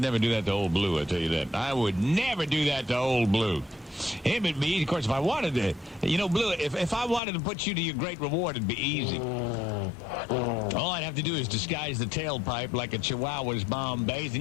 never do that to old Blue, I tell you that. I would never do that to old Blue. Him and me, of course, if I wanted to, Blue, if I wanted to put you to your great reward, it'd be easy. All I'd have to do is disguise the tailpipe like a Chihuahua's Bombays,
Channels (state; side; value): drops out; right; at 7.2 s